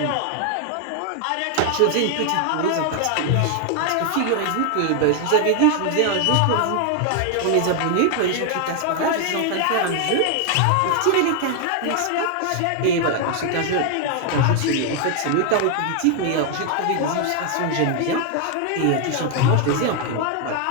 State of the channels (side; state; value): both; different; correlation 0.00